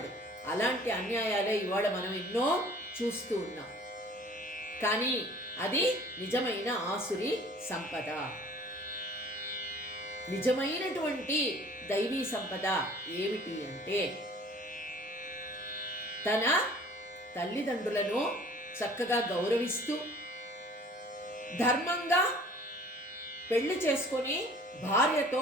అలాంటి అన్యాయాలే ఇవాళ మనం ఎన్నో చూస్తూ ఉన్నాం. కానీ అది నిజమైన ఆసురి సంపద. నిజమైనటువంటి దైవీ సంపద ఏమిటి అంటే తన తల్లిదండ్రులను చక్కగా గౌరవిస్తూ ధర్మంగా పెళ్లి చేసుకొని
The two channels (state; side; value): normal; both; correlation 0.50